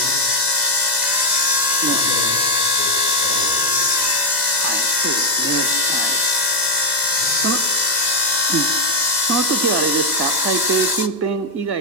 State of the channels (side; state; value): left; late; 2.0 ms